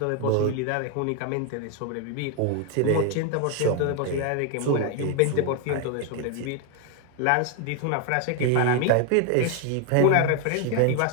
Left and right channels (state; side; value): different; both; correlation 0.01